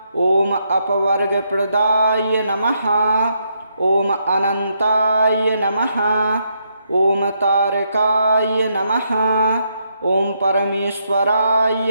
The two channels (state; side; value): inverted; both; correlation -0.77